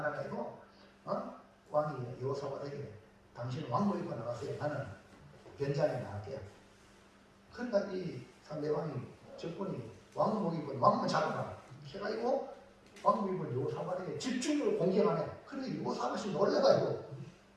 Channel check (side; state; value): both; identical; correlation 1.00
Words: 왕이 여호사밧에게 당신은 왕복 입고 나가세요. 나는 변장에 나갈게요. 그러니까 이 상대방이 적군이 왕복 입은 왕만 잡아라 해가지고 왕복 입은 여호사밧에게 집중적으로 공격하네. 그래서 여호사밧이 놀래가지고